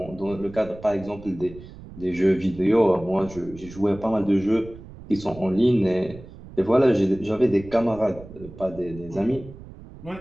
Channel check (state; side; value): noise; right; rumble, 17 dB below the sound